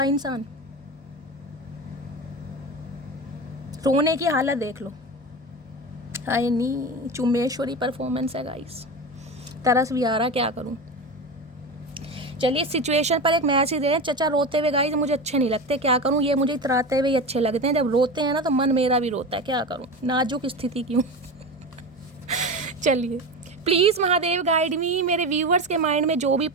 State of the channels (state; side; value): normal; both; correlation 0.25